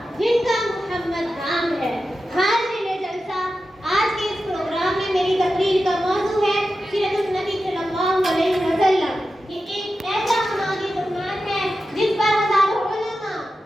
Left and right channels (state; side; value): normal; both; correlation 0.91